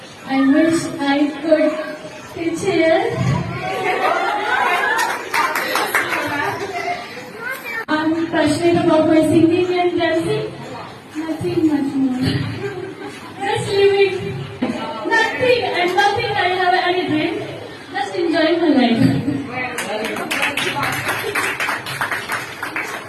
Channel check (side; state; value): both; identical; correlation 1.00